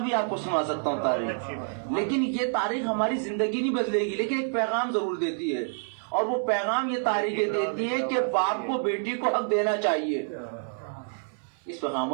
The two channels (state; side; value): silent; left; digital silence